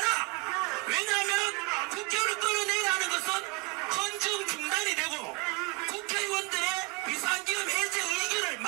왜냐하면 국회의원을 끌어내라는 것은 헌정 중단이 되고 국회의원들의 비상기금 해제 의견을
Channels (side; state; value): left; quieter; 29.1 dB